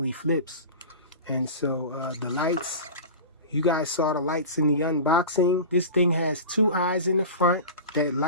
flips. And so the lights, you guys saw the lights in the unboxing. This thing has two eyes in the front that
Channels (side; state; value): both; inverted; correlation -0.32